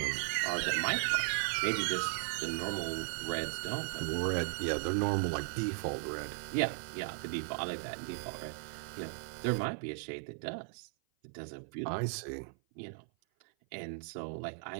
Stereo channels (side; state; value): left; silent; 53 dB below the other